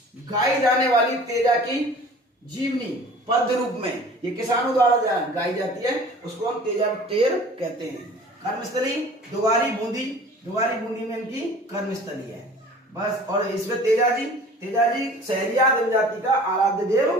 गाई जाने वाली तेजा की जीवनी पद्य रूप में ये किसानों द्वारा गाई जाती है, उसको हम तेजा टेर कहते हैं। कर्मस्थली दुगारी बूंदी में इनकी कर्मस्थली है बस। और इसमें तेजा जी सहरिया जनजाति का आराध्य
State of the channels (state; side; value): normal; both; correlation 0.46